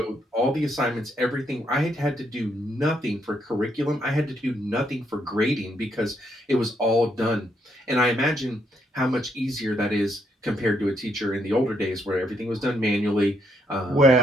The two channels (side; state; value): both; normal; correlation 0.74